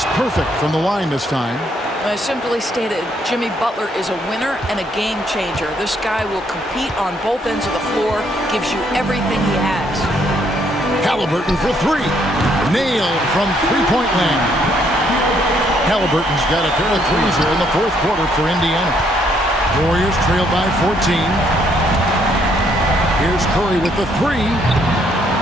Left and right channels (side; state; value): both; normal; correlation 0.70